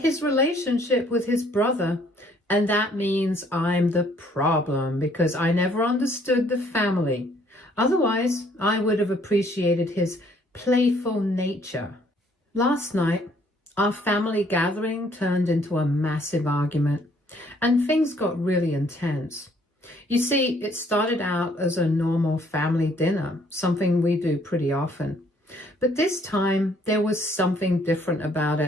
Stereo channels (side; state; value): both; normal; correlation 0.63